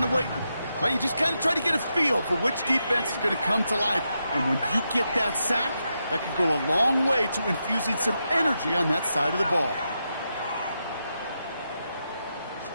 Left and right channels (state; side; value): inverted; both; correlation -0.85